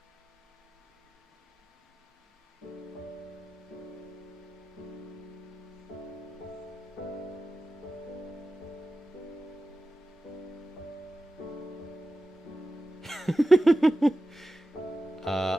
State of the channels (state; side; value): normal; both; correlation 0.94